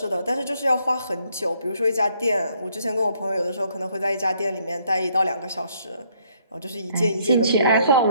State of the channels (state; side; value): inverted; both; correlation -0.68